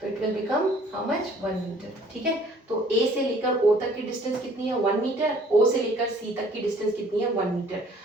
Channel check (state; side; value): normal; both; correlation 0.56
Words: तो it will become how much, 1 metre. ठीक है, तो A से लेकर O तक की डिस्टेंस कितनी है 1 मीटर, O से लेकर C तक की डिस्टेंस कितनी है 1 मीटर।